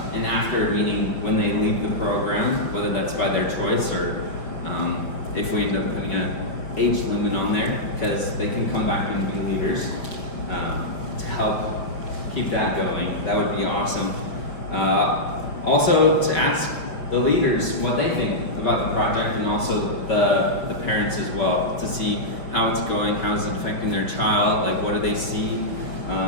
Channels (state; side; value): late; right; 5.6 ms